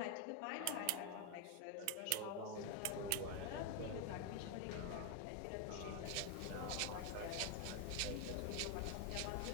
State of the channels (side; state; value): both; different; correlation 0.01